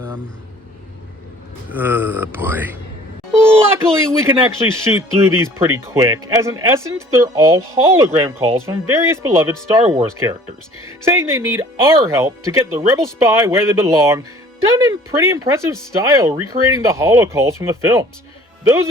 Boy. Luckily, we can actually shoot through these pretty quick, as in essence, they're all hologram calls from various beloved Star Wars characters, saying they need our help to get the Rebel spy where they belong, done in pretty impressive style, recreating the holo calls from the films. Those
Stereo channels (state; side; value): normal; both; correlation 0.51